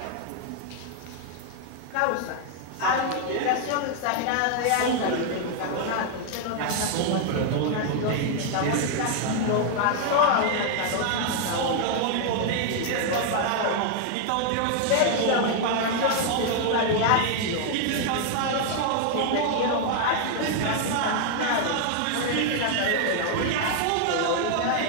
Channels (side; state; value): both; different; correlation 0.00